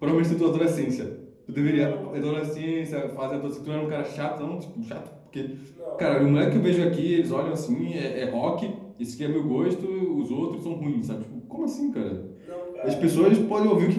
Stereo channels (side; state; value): both; identical; correlation 1.00